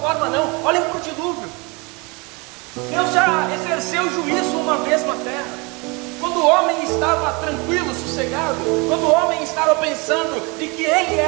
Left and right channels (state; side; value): quieter; left; 28.5 dB